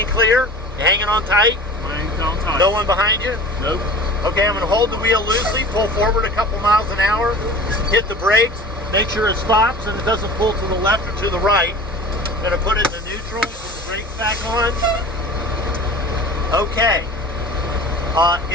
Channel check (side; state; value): both; normal; correlation 0.40